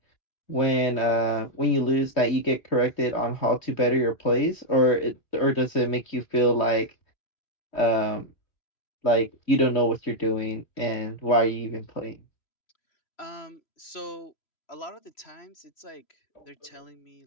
when you lose that you get corrected on how to better your plays, or does it make you feel um like you don't know what you're doing and why are you even playing? So a lot of the times it's like they're telling me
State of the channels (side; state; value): right; late; 2.9 ms